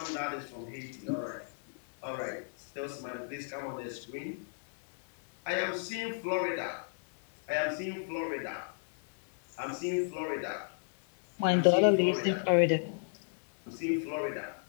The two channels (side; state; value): right; silent; 56 dB below the other